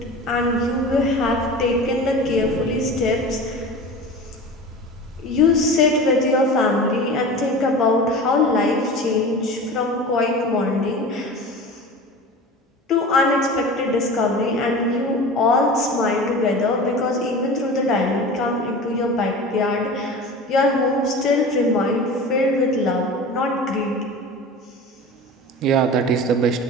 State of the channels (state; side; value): normal; both; correlation 0.34